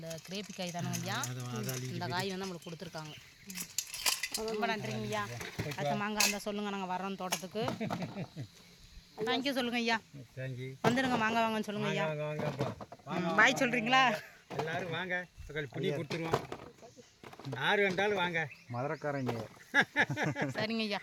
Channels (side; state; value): both; identical; correlation 1.00